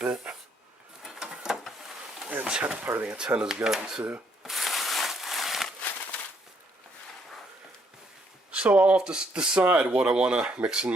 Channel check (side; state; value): both; normal; correlation 0.70